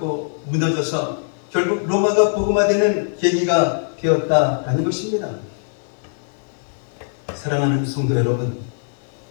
무너져서 결국 로마가 복음화되는 계기가 되었다라는 것입니다. 사랑하는 성도 여러분,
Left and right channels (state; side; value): silent; right; 65 dB below the other